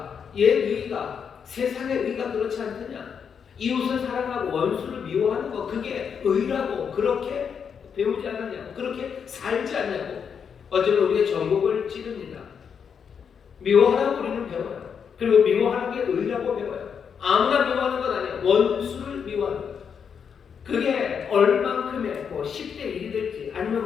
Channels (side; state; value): right; quieter; 7.0 dB